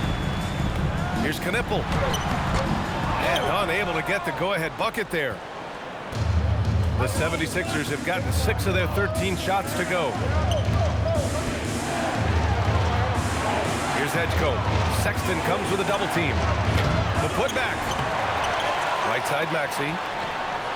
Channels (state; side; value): identical; both; correlation 1.00